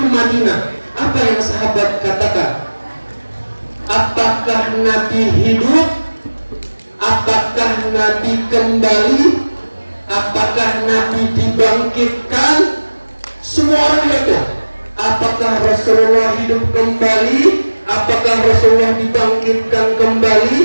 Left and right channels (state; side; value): inverted; both; correlation -1.00